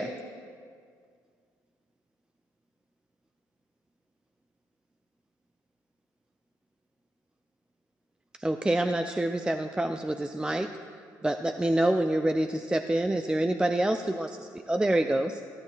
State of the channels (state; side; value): normal; both; correlation 0.94